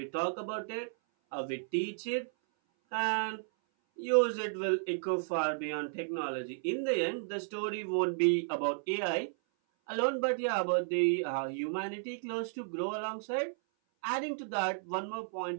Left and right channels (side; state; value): left; silent; 55 dB below the other